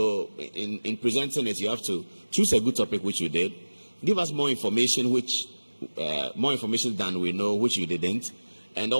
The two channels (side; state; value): both; inverted; correlation -1.00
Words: in presenting it, you have to choose a good topic, which you did. Give us more information, more information than we know, which you didn't, and